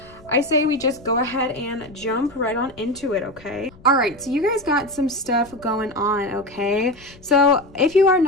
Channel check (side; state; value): left; noise; rumble, 24 dB below the sound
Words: I say we just go ahead and jump right on into it. Okay, all right, so you guys got some stuff going on. Okay, so if you are